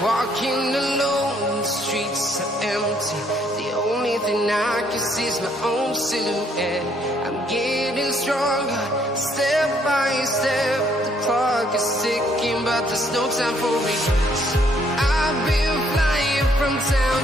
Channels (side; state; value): both; normal; correlation 0.67